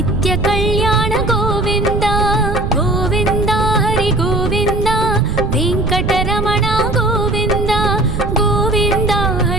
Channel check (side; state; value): right; noise; rumble, 2 dB below the sound